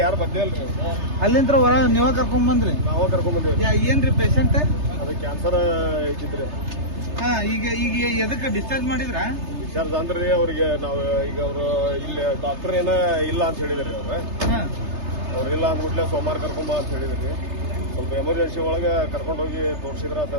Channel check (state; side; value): late; left; 3.3 ms